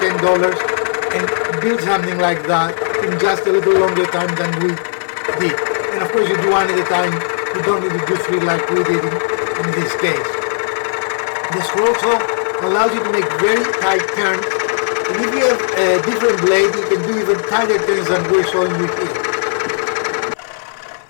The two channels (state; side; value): silent; right; digital silence